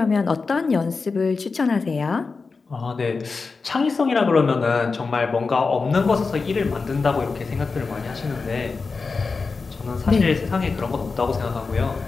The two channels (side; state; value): right; quieter; 4.4 dB